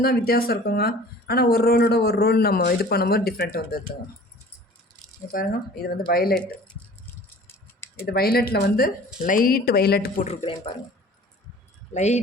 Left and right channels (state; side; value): normal; both; correlation 0.46